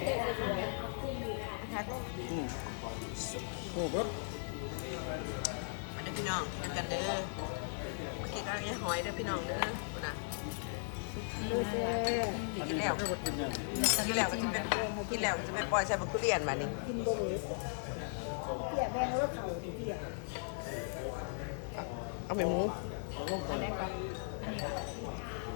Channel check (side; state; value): right; silent; digital silence